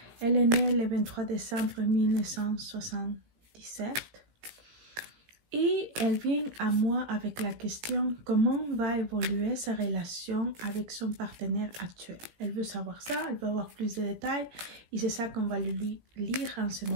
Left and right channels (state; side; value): late; left; 18 ms